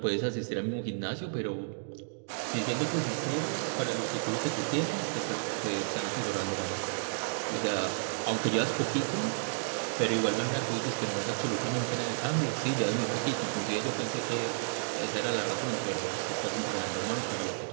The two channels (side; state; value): left; silent; digital silence